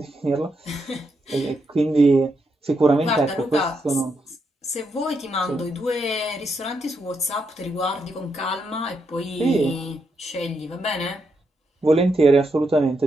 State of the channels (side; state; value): both; normal; correlation 0.81